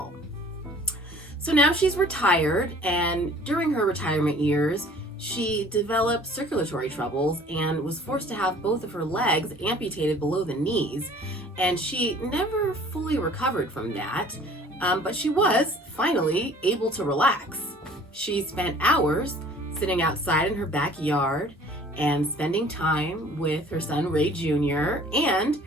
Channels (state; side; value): normal; both; correlation 0.51